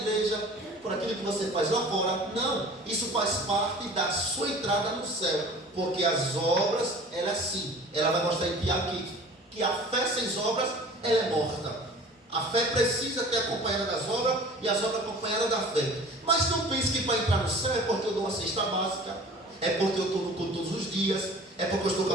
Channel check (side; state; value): both; normal; correlation 0.44